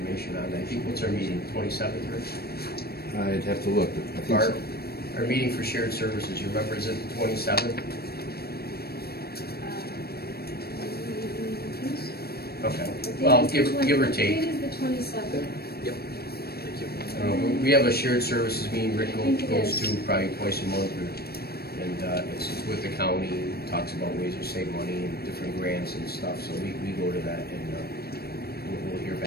on that. I think, what's our meeting, 27th, Rick? I'd have to look. I think so. Our meeting for shared services, you remember, is it the 27th? Okay, well, give or Date take. is the 27th. Yep. Thank you. We have a shared services meeting Rick goes to probably twice a month, and it's with the county, talks about ways to save money and different grants and stuff, so we go to that, and we'll hear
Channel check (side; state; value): right; late; 0.46 ms